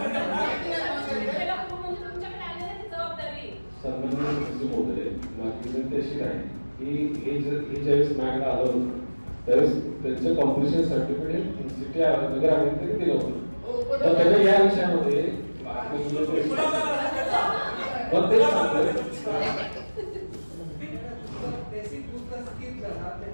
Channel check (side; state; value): both; inverted; correlation -1.00